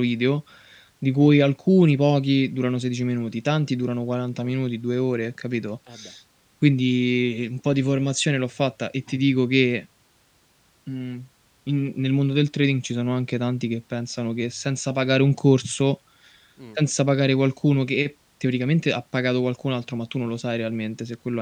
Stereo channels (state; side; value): identical; both; correlation 1.00